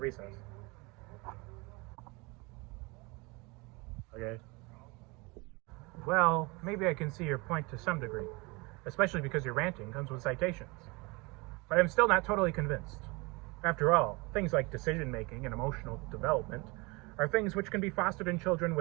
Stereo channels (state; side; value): quieter; left; 26.5 dB